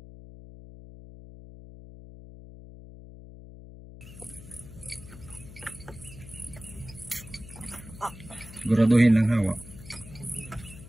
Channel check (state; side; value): noise; left; hum, 16 dB below the sound